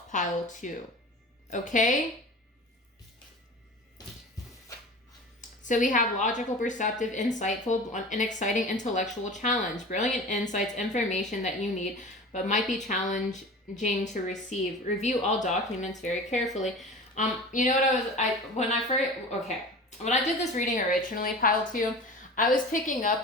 pile 2. Okay? So we have logical, perceptive, insightful, an exciting intellectual challenge, brilliant insights, information that you need, but might be challenging to receive. Review all documents very carefully. You know what when I did this reading originally, pile 2, I was picking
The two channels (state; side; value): normal; both; correlation 0.36